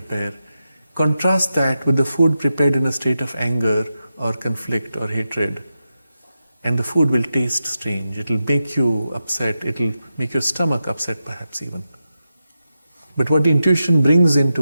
Contrast that with the food prepared in a state of anger or conflict or hatred. And the food will taste strange. It will make you upset. It will make your stomach upset perhaps even. But what the intuition brings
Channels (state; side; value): inverted; both; correlation -0.90